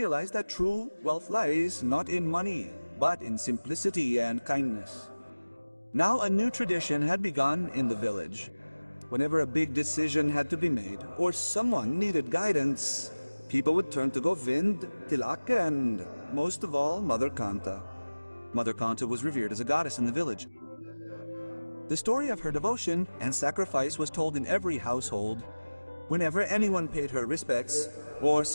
that true wealth lies not in money, but in simplicity and kindness. Now a new tradition had begun in the village. Whenever a big decision had to be made or someone needed guidance, people would turn to Govind, Tilak, and most of all, Mother Kanta. Mother Kanta was revered as a goddess in the village. The story of her devotion and sacrifice was told in every household. Whenever anyone paid her respects, or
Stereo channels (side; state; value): both; inverted; correlation -1.00